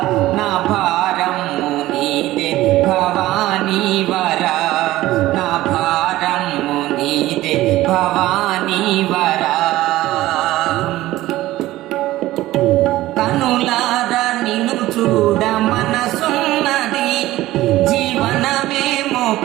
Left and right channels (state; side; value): quieter; left; 16.3 dB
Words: నా భారము నీదే భవానీ వర. నా భారము నీదే భవానీ వర. కనులార నిన్ను చూడ మనసున్నది, జీవనమేమో